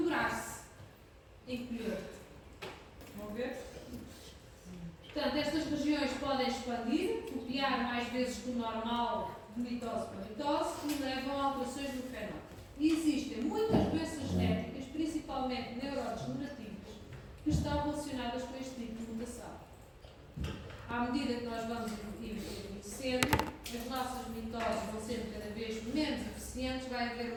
encolher-se. Vão ver? Portanto, estas regiões podem expandir, copiar mais vezes que o normal de mitose para mitose e levam a alterações no fenótipo. E existem muitas doenças genéticas, principalmente neurodegenerativas, que estão relacionadas com este tipo de mutação. À medida que nós vamos envelhecendo, as nossas mitoses vão sendo cada vez menos eficientes, vai haver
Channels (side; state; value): both; identical; correlation 1.00